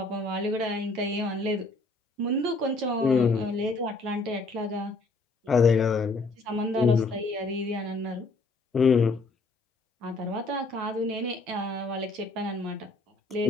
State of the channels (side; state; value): right; quieter; 3.3 dB